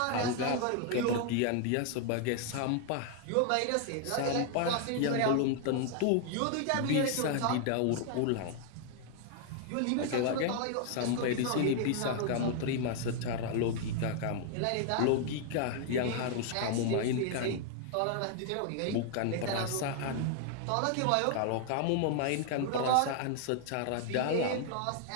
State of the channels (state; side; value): different; both; correlation 0.00